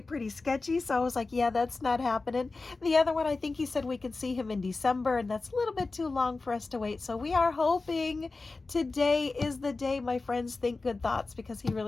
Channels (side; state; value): right; quieter; 3.7 dB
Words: sketchy, so I was like, yeah, that's not happening. The other one, I think he said we could see him in December, and that's a little bit too long for us to wait. So we are hoping today is the day, my friends. Think good thoughts, because he